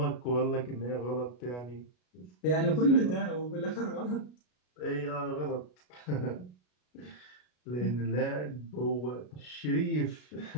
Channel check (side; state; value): right; late; 33 ms